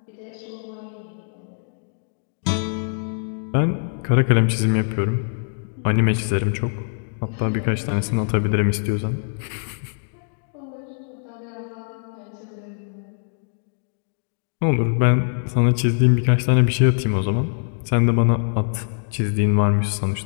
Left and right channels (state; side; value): silent; right; digital silence